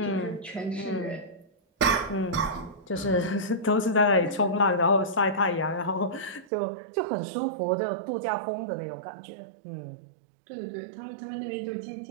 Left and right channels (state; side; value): drops out; left; at 6.5 s